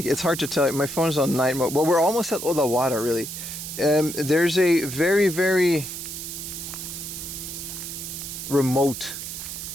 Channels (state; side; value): noise; right; hiss, 8 dB below the sound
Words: hard to tell. My phone's on night mode. Well, we're almost at Odawara, really. There's a very, very remote